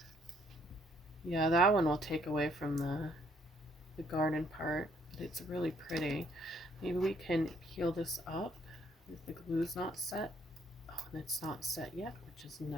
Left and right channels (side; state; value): both; normal; correlation 0.67